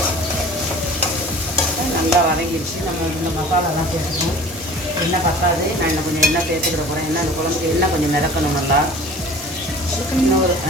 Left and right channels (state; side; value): normal; both; correlation 0.44